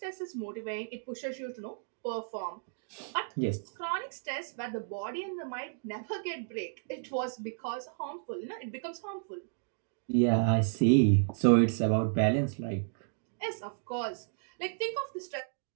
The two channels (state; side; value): silent; left; digital silence